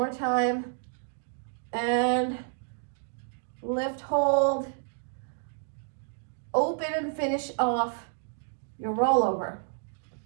time. And lift, hold. Open and finish off your rollover.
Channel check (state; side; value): silent; left; digital silence